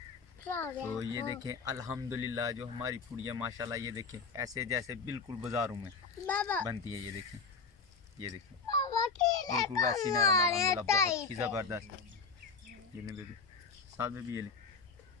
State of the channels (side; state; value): right; quieter; 4.9 dB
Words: तो ये देखें अल्हम्दुलिल्लाह जो हमारी पूड़ियाँ माशाल्लाह ये देखें ऐसे जैसे बिल्कुल बाज़ारों में बनती है। ये देखें बिल्कुल वैसी नरम अल्हम्दुलिल्लाह बहुत ही ज़बरदस्त। ये ले बेबी साथ में भी ये ले